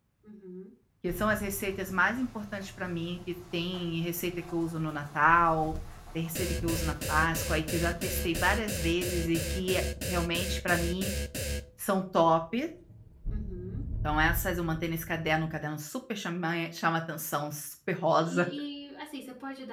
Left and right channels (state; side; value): identical; both; correlation 1.00